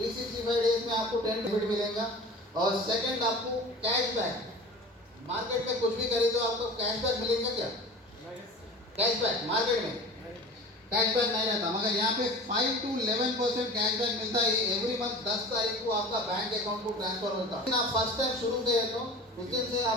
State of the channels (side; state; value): both; normal; correlation 0.38